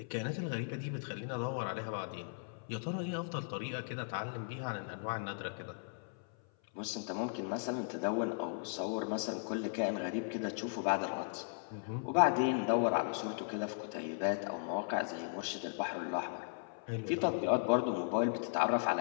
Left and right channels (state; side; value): silent; right; 53 dB below the other